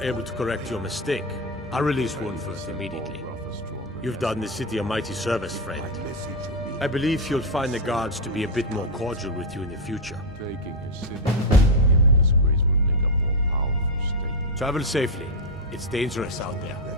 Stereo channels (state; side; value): normal; both; correlation 0.05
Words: to correct your mistake. I'll release Wuunferth immediately. You've done the city a mighty service, friend. I believe you'll find the guards to be a bit more cordial with you in the future. Taking his city in disgrace would make a more powerful state. Travel safely. It's dangerous out there.